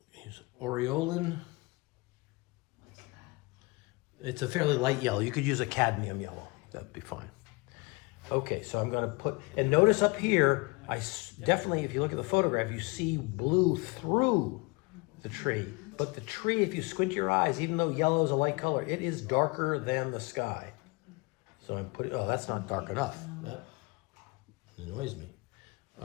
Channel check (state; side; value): quieter; right; 26.7 dB